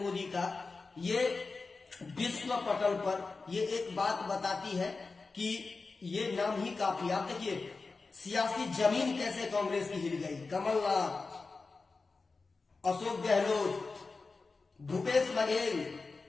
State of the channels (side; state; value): right; quieter; 4.1 dB